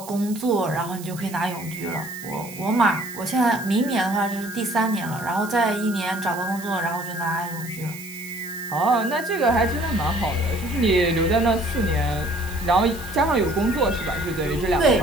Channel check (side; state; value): right; noise; hiss, 16 dB below the sound